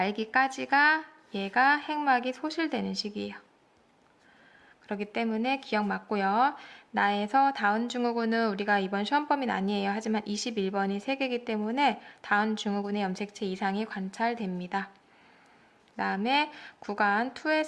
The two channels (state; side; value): identical; both; correlation 1.00